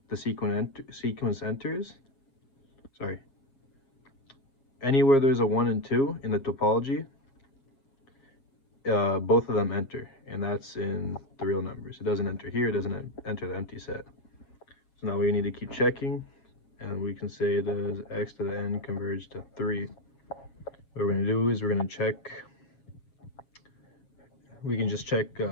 the sequence enters, anywhere there's a 1 and 2 in the topology, both of them enter, and that's in the real numbers. It doesn't enter here, it doesn't enter the empty set. So now we need to keep checking, and we can say, does x to the n converge to 3? What we're going to do is we're going to check, we can just check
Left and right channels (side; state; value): right; late; 7.4 ms